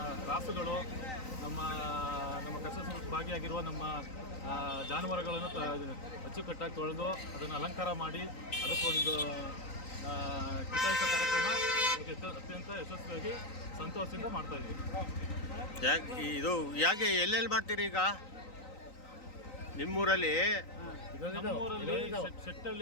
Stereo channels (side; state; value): right; late; 3.9 ms